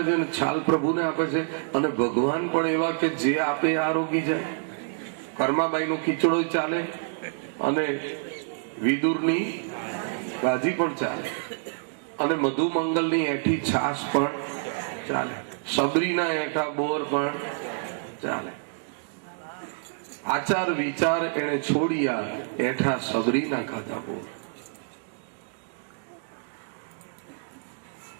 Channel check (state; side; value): silent; left; digital silence